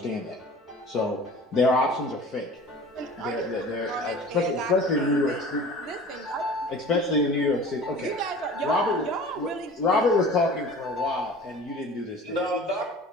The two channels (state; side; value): normal; both; correlation 0.42